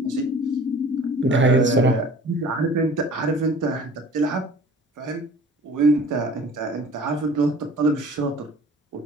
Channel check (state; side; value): normal; both; correlation 0.46